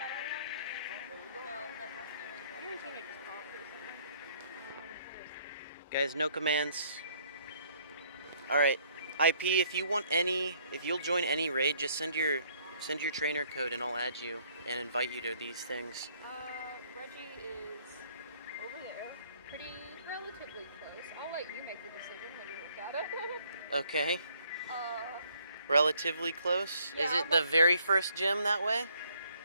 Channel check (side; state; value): both; inverted; correlation -0.64